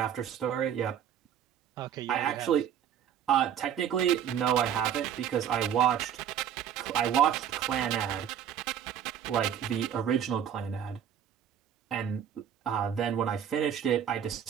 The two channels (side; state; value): left; quieter; 9.2 dB